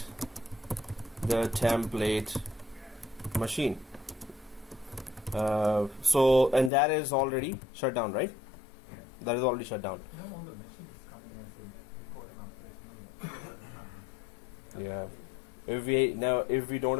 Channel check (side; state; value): right; drops out; at 6.7 s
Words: the template machine. And that is already shut down, right? Yeah. That is already shut down. No, the machine is coming as a Cortana. Yeah. If we don't